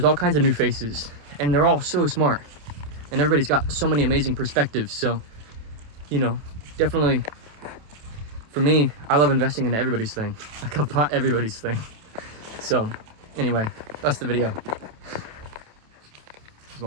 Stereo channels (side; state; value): left; late; 27 ms